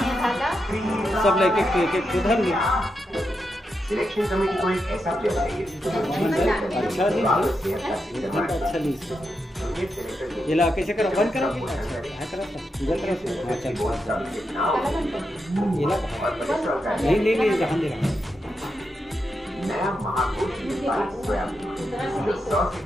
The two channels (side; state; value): both; normal; correlation 0.85